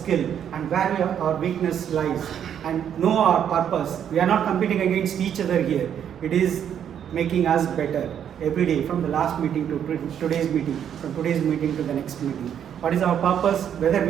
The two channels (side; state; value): left; quieter; 9.1 dB